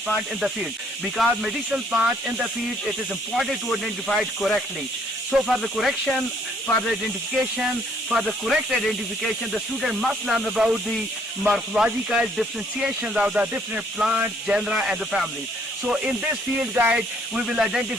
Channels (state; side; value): normal; both; correlation 0.65